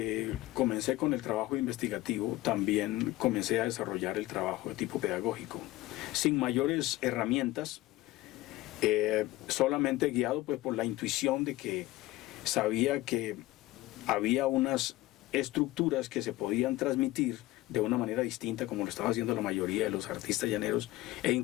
comencé con el trabajo investigativo, también comencé a desarrollar el trabajo de tipo pedagógico, sin mayores herramientas, solamente guiado pues por la intuición de que sabía que había unas estructuras que se podían transmitir de una manera distinta, como lo estaba haciendo la mayoría de los artistas llaneros, e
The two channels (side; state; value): right; quieter; 17.5 dB